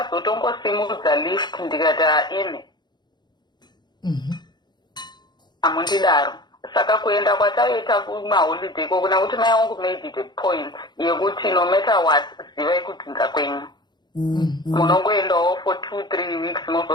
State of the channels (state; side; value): late; right; 0.21 ms